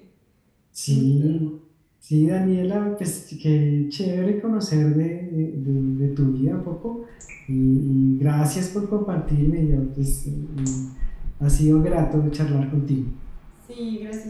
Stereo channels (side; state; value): both; identical; correlation 1.00